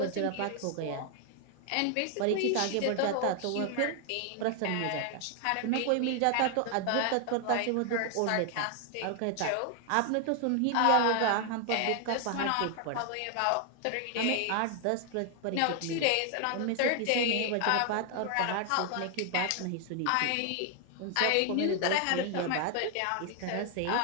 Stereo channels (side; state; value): both; different; correlation 0.00